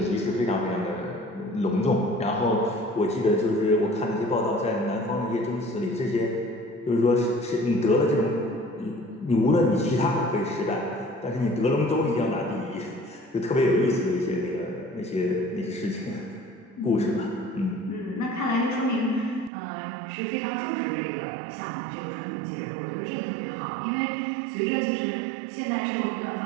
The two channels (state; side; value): drops out; left; at 19.5 s